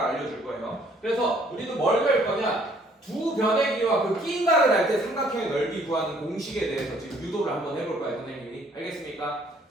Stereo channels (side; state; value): both; normal; correlation 0.61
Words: 알려줄 거예요. 그래서 우리도 뭘 배울 거냐? 두 변의 길이와 그 끼인각을 할 때 삼각형의 넓이 구하는 공식에 대해서 지금 유도를 한번 해볼 거예요, 선생님이. 알겠습니까?